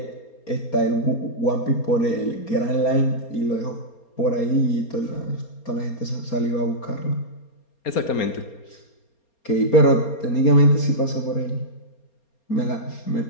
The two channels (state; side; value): late; right; 4.3 ms